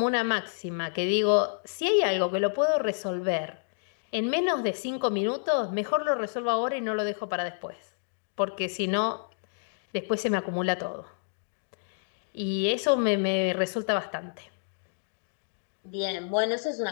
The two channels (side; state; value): right; silent; digital silence